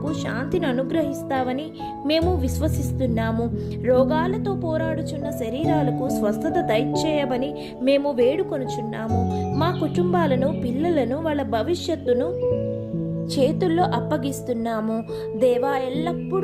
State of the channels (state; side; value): identical; both; correlation 1.00